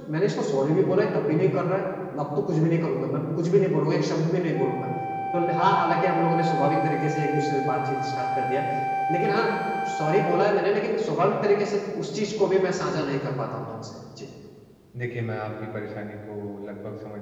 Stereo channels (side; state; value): both; identical; correlation 1.00